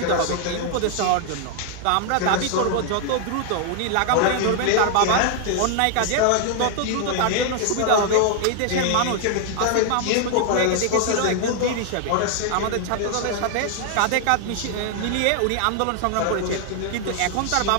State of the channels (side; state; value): both; different; correlation 0.00